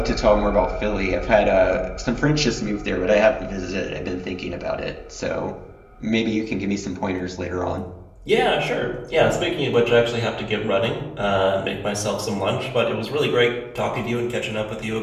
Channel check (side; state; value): both; identical; correlation 1.00